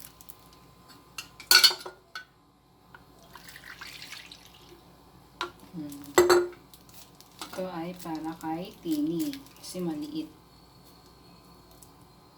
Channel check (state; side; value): identical; both; correlation 1.00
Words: Ito ay para kay Tini kasi maliit.